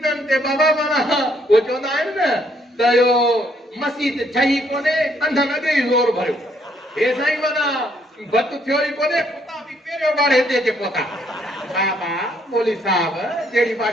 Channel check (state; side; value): normal; both; correlation 0.69